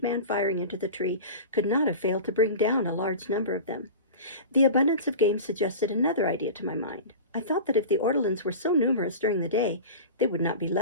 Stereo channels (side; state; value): both; inverted; correlation -0.32